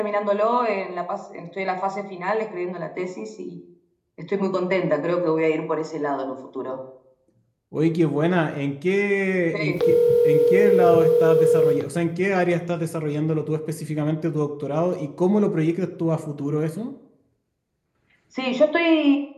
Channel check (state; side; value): identical; both; correlation 1.00